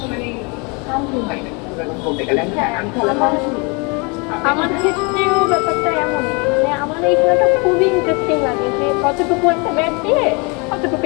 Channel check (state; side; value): quieter; right; 30.8 dB